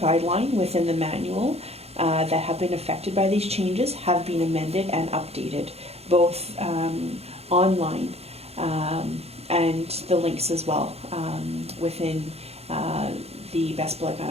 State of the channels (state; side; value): late; left; 0.30 ms